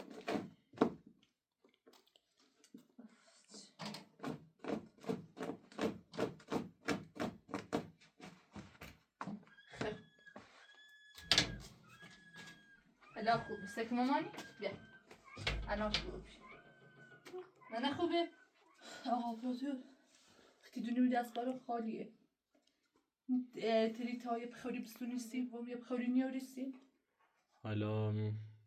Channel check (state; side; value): identical; both; correlation 1.00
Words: الان خوبه سک مامانی بیا الان خوبه نه خوبه آبادو وقتی دونیم دست بارو خالیه تریت های بخوری بستونیستیم و یه بخوری نیاریستیم حالا